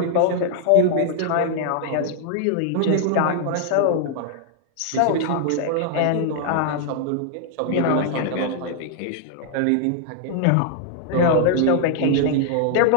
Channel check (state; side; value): different; both; correlation 0.00